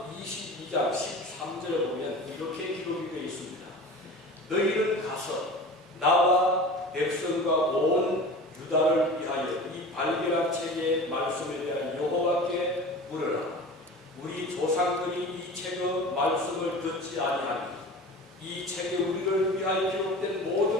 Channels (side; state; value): both; normal; correlation 0.36